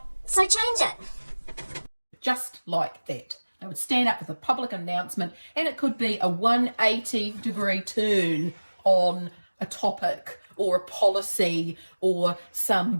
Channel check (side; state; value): both; inverted; correlation -1.00